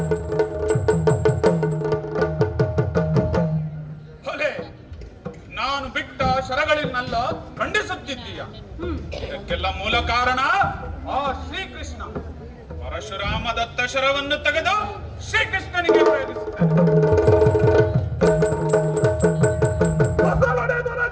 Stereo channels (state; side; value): identical; both; correlation 1.00